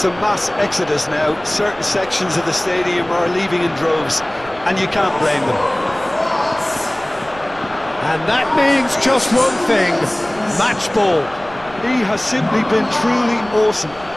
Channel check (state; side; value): noise; right; rumble, 21 dB below the sound